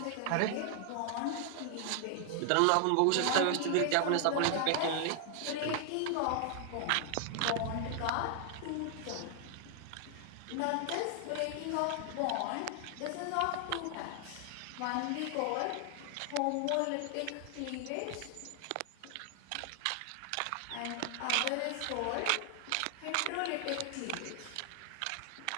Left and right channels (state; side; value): different; both; correlation 0.00